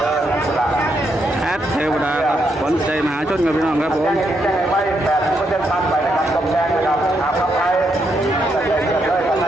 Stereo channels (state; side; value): normal; both; correlation 0.79